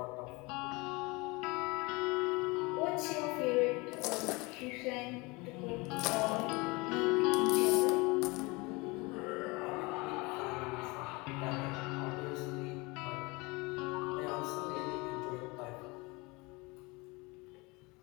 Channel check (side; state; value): right; quieter; 25.5 dB